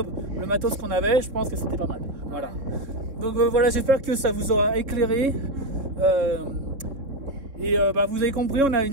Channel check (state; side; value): late; left; 3.7 ms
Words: le matos qu'on avait, je pense que c'était pas mal. Voilà. Donc voilà, j'espère que ça vous aura éclairé. Vous avez compris, on a